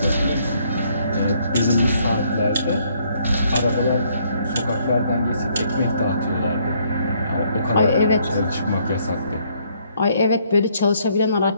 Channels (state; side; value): inverted; both; correlation -0.68